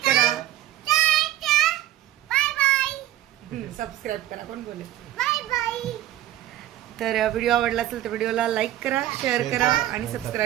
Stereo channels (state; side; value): quieter; left; 13.6 dB